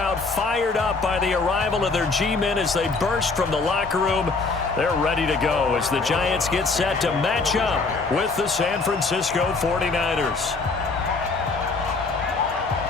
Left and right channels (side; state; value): right; quieter; 4.0 dB